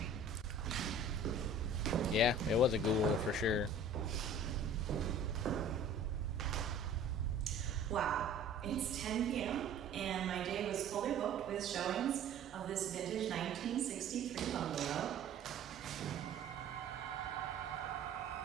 Yeah, it was a ghoul for sure. Wow, it's 10 p.m. and my day was fully booked with showings of this vintage 1963 bungalow.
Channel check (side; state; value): left; quieter; 3.2 dB